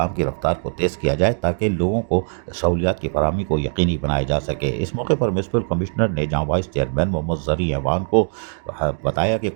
کی رفتار کو تیز کیا جائے تاکہ لوگوں کو سہولیات کی فراہمی کو یقینی بنایا جا سکے۔ اس موقع پر میونسپل کمشنر نے جہاں وائس چیئرمین محمد زرعی ایوان کو بتایا کہ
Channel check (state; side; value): silent; left; digital silence